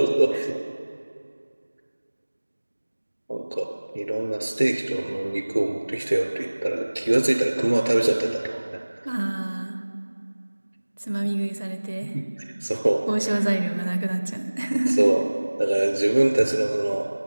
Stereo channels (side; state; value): both; inverted; correlation -1.00